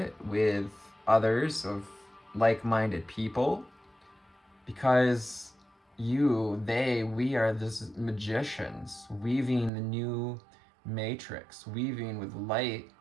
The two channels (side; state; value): left; drops out; at 9.7 s